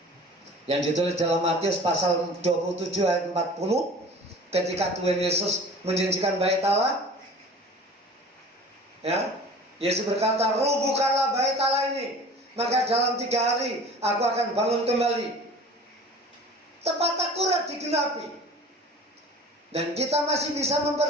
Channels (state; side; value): normal; both; correlation 0.43